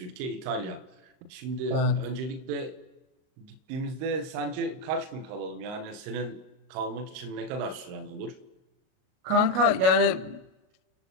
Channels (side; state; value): left; late; 38 ms